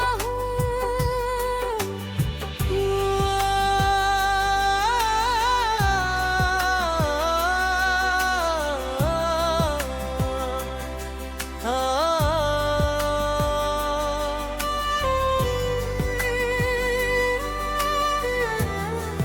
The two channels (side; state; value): both; identical; correlation 1.00